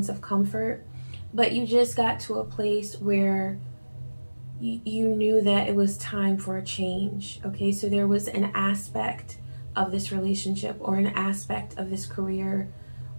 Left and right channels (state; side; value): inverted; both; correlation -1.00